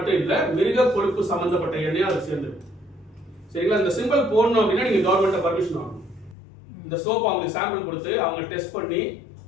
இல்ல, மிருக கொழுப்பு சம்பந்தப்பட்ட எண்ணெய் அது சேர்ந்துருக்கு. சரிங்களா? இந்த சிம்பிள் போடணும் அப்படின்னா நீங்க கவர்மெண்ட் பர்மிஷன் வாங்கணும். இந்த சோப் அவங்களுக்கு சாம்பிள் கொடுத்து அவங்க டெஸ்ட் பண்ணி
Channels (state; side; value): drops out; right; at 6.4 s